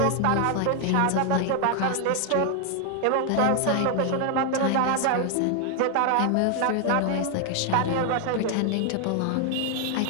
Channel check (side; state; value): both; different; correlation 0.00